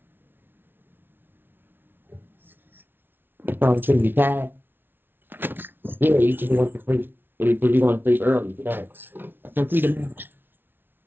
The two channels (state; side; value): late; left; 0.10 ms